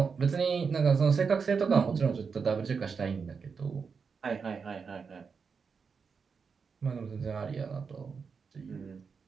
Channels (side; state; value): left; quieter; 5.6 dB